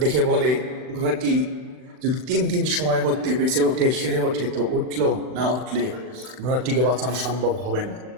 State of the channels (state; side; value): late; left; 39 ms